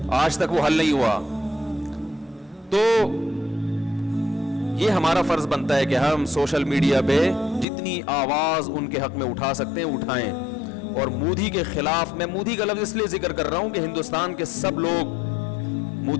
آج تک وہ حل نہیں ہوا. تو یہ ہمارا فرض بنتا ہے کہ ہم سوشل میڈیا پہ جتنی آواز ان کے حق میں اٹھا سکتے ہیں اٹھائیں. اور مودی کے خلاف, میں مودی کا لفظ اس لیے ذکر کر رہا ہوں کہ ہندوستان کے سب لوگ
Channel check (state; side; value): drops out; right; at 7.7 s